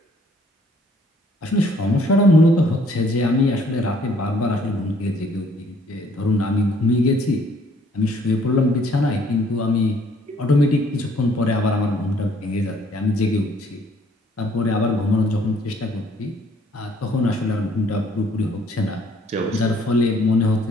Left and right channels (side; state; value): both; normal; correlation 0.62